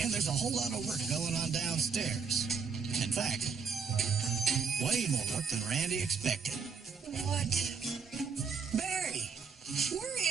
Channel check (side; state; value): left; quieter; 5.8 dB